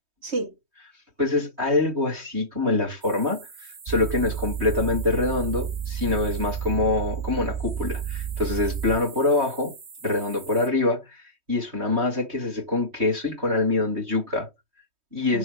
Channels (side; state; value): left; late; 3.2 ms